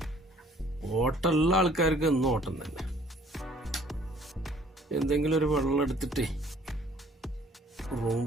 ഓട്ടമുള്ള ആൾക്കാർക്ക് എന്നും ഓട്ടം തന്നെ. എന്തെങ്കിലും ഒരു വെള്ളം എടുത്തിട്ടേ റൂം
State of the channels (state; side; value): normal; both; correlation 0.57